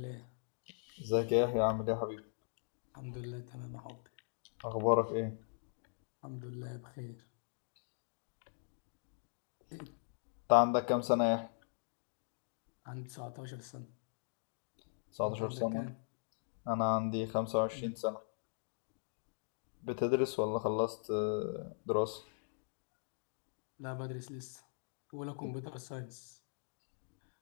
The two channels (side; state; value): right; silent; digital silence